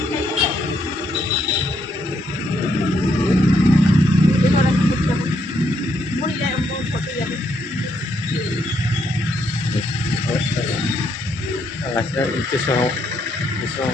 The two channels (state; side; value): normal; both; correlation 0.75